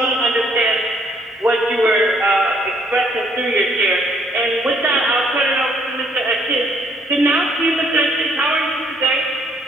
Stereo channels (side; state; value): both; normal; correlation 0.66